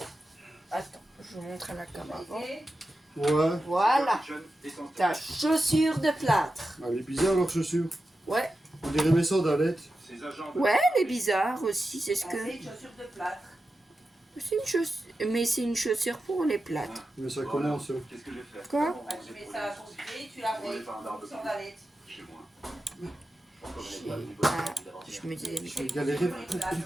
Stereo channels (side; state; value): both; normal; correlation 0.91